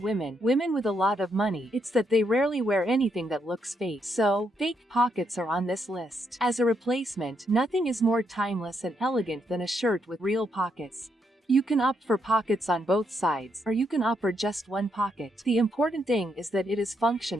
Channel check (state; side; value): normal; both; correlation 0.77